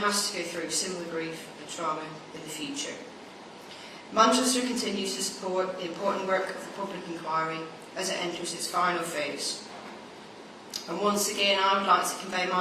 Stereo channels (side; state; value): both; identical; correlation 1.00